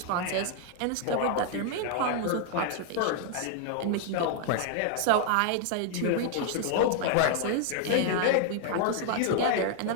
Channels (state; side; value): different; both; correlation 0.00